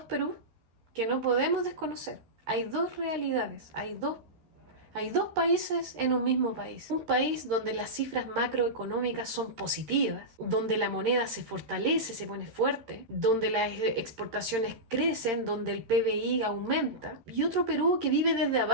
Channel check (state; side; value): late; left; 13 ms